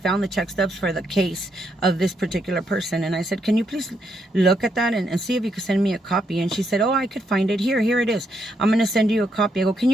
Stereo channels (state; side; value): normal; both; correlation 0.77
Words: the check stubs for the case of this particular person. And I said, can you please look at that and see if you could send me a copy? And she said, oh, I could find it. Here it is. I'm going to send you a copy. I go, can